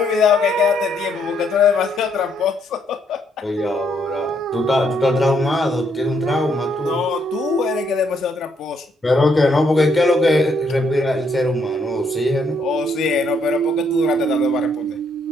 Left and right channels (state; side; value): normal; both; correlation 0.73